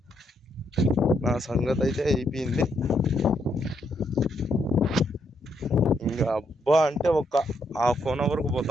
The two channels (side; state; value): both; normal; correlation 0.76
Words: నా సంగతి అయితే అయిపోయింది. ఇంకా అబ్బా అంటే ఒక 1/2 అవర్కు